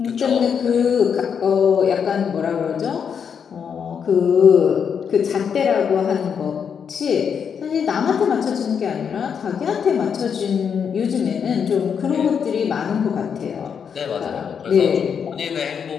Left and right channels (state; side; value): quieter; right; 7.1 dB